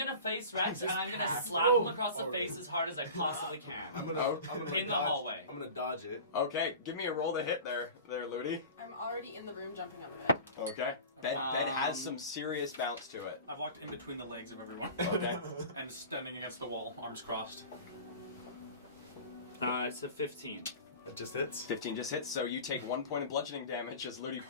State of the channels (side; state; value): both; inverted; correlation -0.36